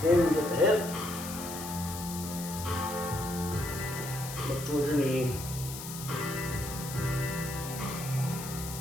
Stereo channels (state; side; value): noise; left; hiss, 9 dB below the sound